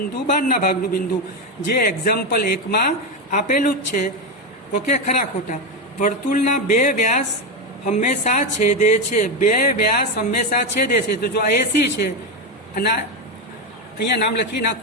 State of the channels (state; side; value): normal; both; correlation 0.11